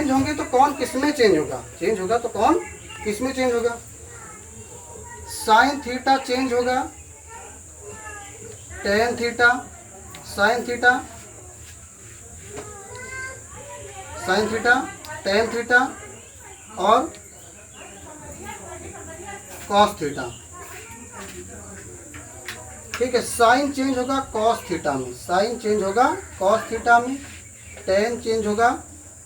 होंगे तो कौन किस में चेंज होगा, चेंज होगा तो कौन किस में चेंज होगा? साइन थीटा चेंज होगा, tan theta, sine theta, sine theta, tan theta और कॉस थीटा। ठीक है, साइन चेंज होगा कॉस थीटा में, साइन चेंज होगा कॉस थीटा में, टेन चेंज होगा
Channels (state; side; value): identical; both; correlation 1.00